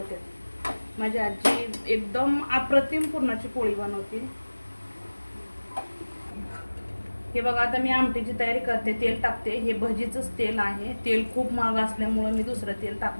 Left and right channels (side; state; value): both; inverted; correlation -1.00